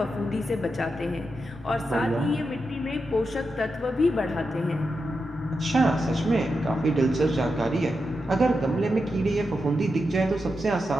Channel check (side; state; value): both; normal; correlation 0.87